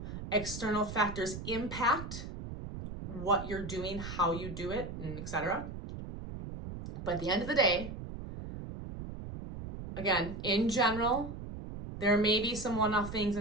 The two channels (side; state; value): right; noise; rumble, 9 dB below the sound